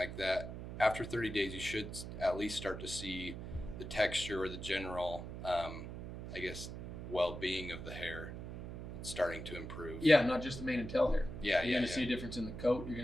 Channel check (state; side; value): noise; right; hum, 8 dB below the sound